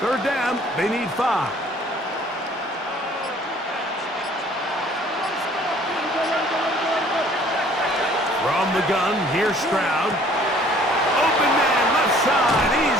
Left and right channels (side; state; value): both; normal; correlation 0.56